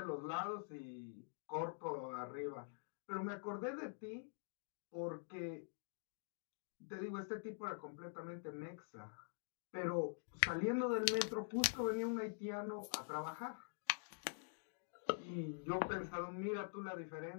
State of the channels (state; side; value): silent; right; digital silence